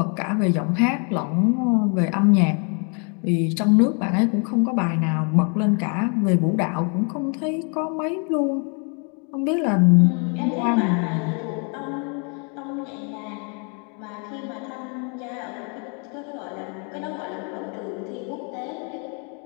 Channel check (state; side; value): quieter; right; 38.0 dB